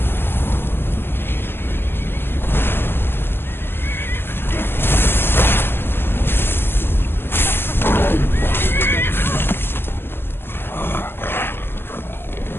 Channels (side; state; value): right; late; 0.11 ms